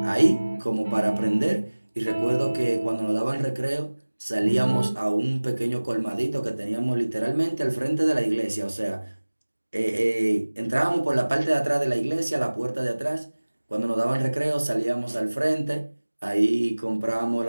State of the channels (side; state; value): both; inverted; correlation -1.00